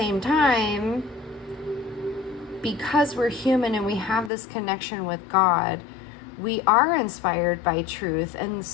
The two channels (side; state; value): right; drops out; at 4.3 s